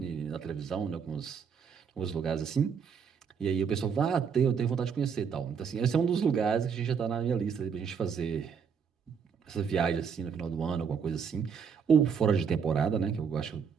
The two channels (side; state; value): left; quieter; 6.6 dB